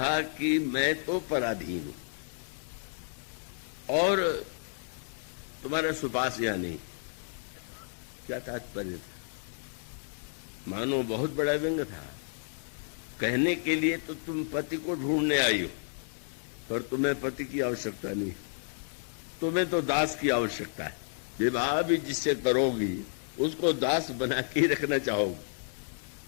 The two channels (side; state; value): right; silent; digital silence